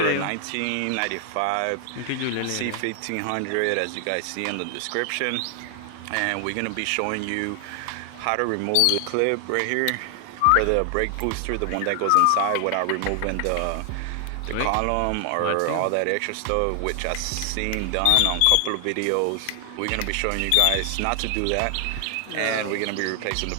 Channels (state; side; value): different; both; correlation 0.00